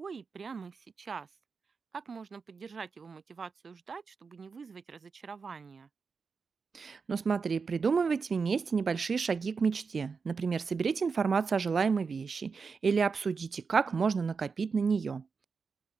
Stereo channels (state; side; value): quieter; left; 5.2 dB